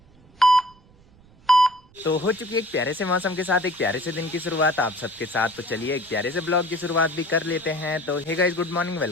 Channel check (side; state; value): right; noise; rumble, 28 dB below the sound